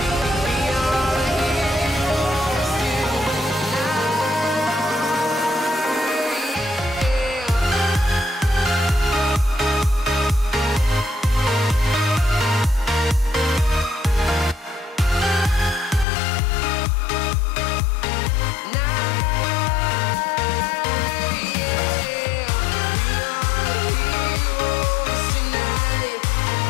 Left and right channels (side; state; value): right; drops out; at 16.1 s